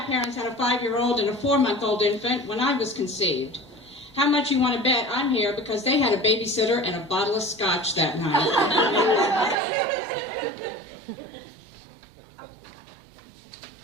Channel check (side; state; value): left; drops out; at 9.6 s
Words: had a 5-year-old and a 4-month-old infant when I was conceived. How much you want to bet I'm here because they had a babysitter and a bottle of scotch that night.